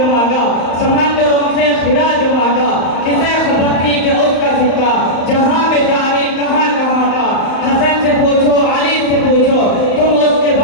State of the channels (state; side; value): late; right; 35 ms